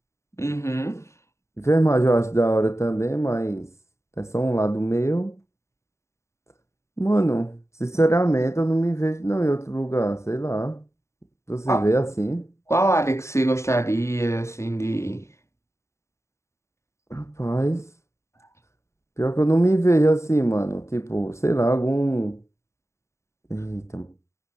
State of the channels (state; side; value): late; right; 0.14 ms